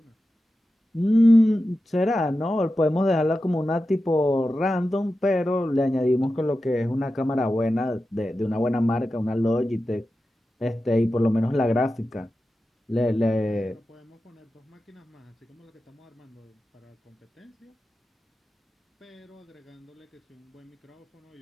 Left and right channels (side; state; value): both; normal; correlation 0.92